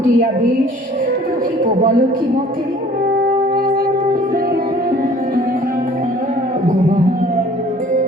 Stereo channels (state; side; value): normal; both; correlation 0.52